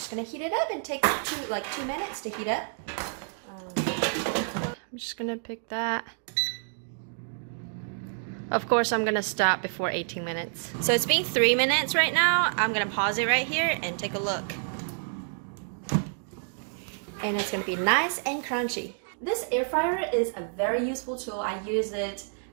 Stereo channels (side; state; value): left; silent; digital silence